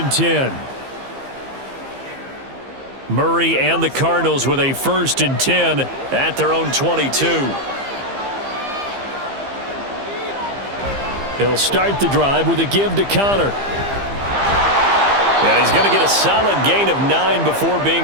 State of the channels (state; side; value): late; left; 15 ms